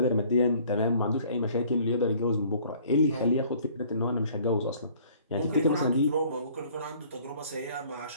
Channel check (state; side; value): inverted; both; correlation -0.56